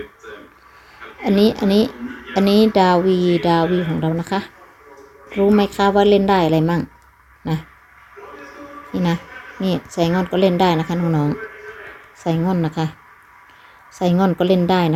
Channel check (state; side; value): identical; both; correlation 1.00